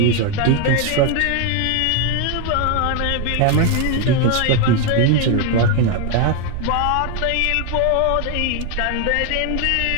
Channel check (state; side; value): different; both; correlation 0.01